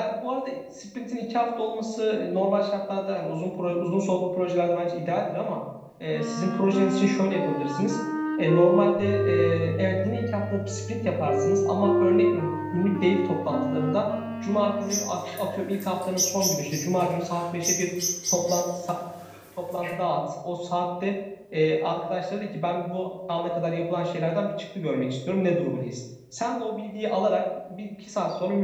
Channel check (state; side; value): identical; both; correlation 1.00